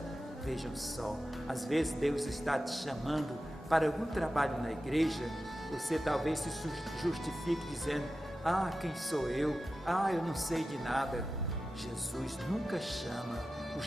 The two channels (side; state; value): both; normal; correlation 0.93